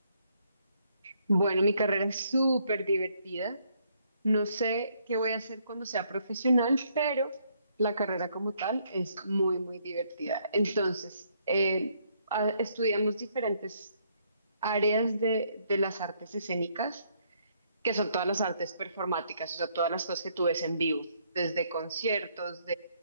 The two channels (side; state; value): both; inverted; correlation -0.70